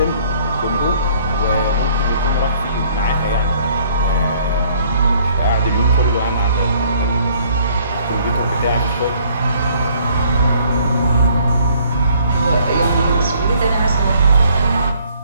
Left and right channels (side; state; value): both; inverted; correlation -0.61